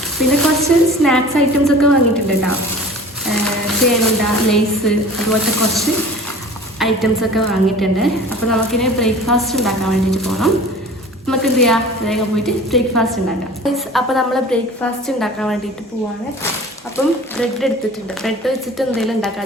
പിന്നെ കുറച്ച് സ്നാക്സ് ഐറ്റംസ് ഒക്കെ വാങ്ങിയിട്ടുണ്ട് കേട്ടോ. ചേനുണ്ട, ലേസ്, അതുപോലത്തെ കുറച്ച് ഐറ്റംസ് ഒക്കെ വാങ്ങിയിട്ടുണ്ട്. അപ്പോൾ നമുക്കിനി ബ്രേക്ക്ഫാസ്റ്റ് ഉണ്ടാക്കാൻ വേണ്ടിയിട്ട് പോകണം. നമുക്ക് എന്ത് ചെയ്യാം, വേഗം പോയിട്ട് ബ്രേക്ക്ഫാസ്റ്റ് ഉണ്ടാക്കാം. അപ്പോൾ നമ്മൾ ബ്രേക്ക്ഫാസ്റ്റ് ഉണ്ടാക്കാൻ വേണ്ടിയിട്ട് പോവാണ്. അപ്പം ബ്രെഡ് എടുത്തിട്ടുണ്ട്. ബ്രെഡ് വെച്ചിട്ട് എന്തെങ്കിലും ഉണ്ടാക്കാൻ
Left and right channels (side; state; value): both; normal; correlation 0.42